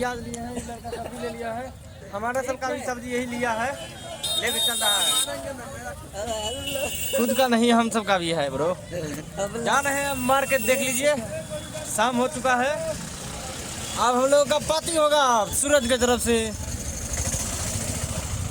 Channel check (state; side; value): identical; both; correlation 1.00